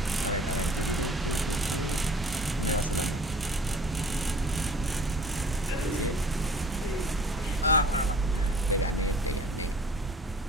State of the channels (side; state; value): both; normal; correlation 0.49